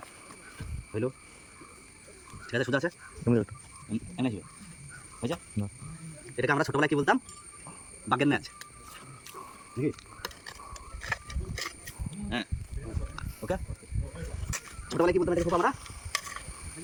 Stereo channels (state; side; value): identical; both; correlation 1.00